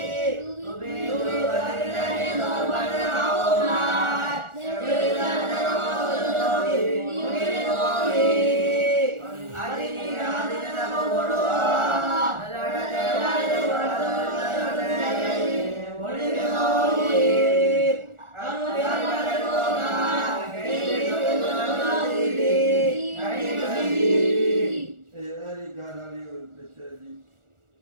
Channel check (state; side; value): late; left; 1.4 ms